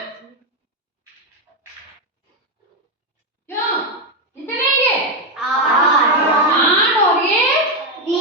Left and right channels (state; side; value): normal; both; correlation 0.07